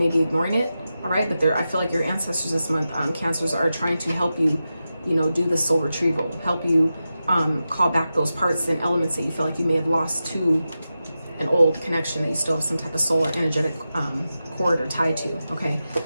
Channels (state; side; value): inverted; both; correlation -0.91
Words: be ignoring it, all right? But I feel like your ancestors this month, Cancers, are trying to help you, you know, do the soul retrieval, help you call back those parts and elements that you feel like you may have lost to an old connection that you still have some type of soul or energetic cord or tie to, okay?